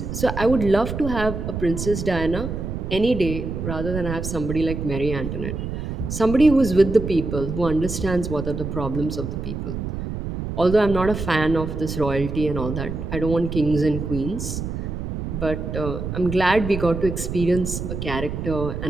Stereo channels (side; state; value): right; noise; rumble, 5 dB below the sound